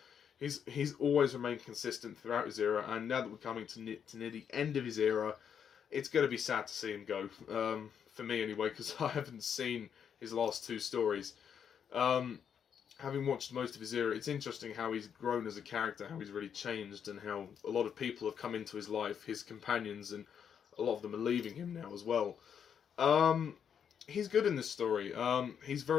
He's always remained consistent throughout his era, and now that we're coming to near the end of his era, it's going to be sad to see him go. For me anyway, because I haven't seen his last two stories. Having watched most of his era, it's interesting how he's grown as a character, how he's really changed, and how a lot of people have come into his life, his companions, and a lot of them are leaving him now as well. He's good in this story. He's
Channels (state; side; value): quieter; right; 7.9 dB